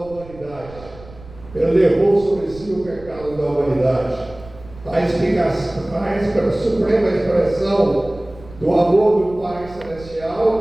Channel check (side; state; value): right; noise; rumble, 20 dB below the sound